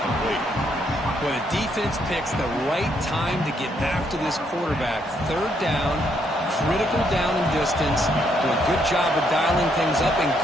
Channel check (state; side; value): normal; both; correlation 0.73